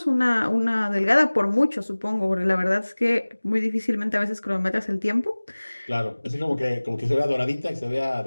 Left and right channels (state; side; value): inverted; both; correlation -1.00